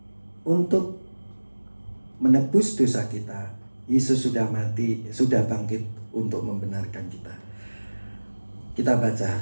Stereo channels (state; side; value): inverted; both; correlation -1.00